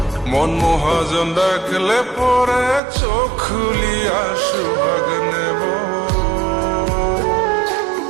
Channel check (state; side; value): drops out; left; at 2.8 s